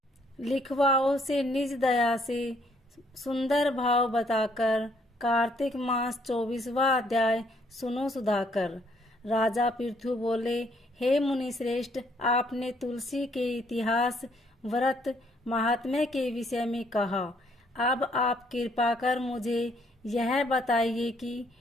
लिखवाओं से निज दया से सुंदर भाव बताकर कार्तिक मास 24वां अध्याय सुनो सुधाकर। राजा पृथु बोले, हे मुनि श्रेष्ठ, आपने तुलसी के इतिहास, व्रत, महात्म्य के विषय में कहा। अब आप कृपा कर मुझे यह बताइए कि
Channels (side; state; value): both; normal; correlation 0.67